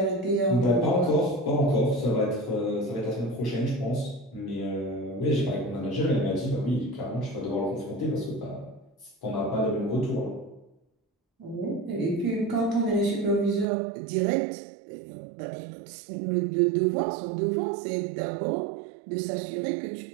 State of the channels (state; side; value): drops out; left; at 13.7 s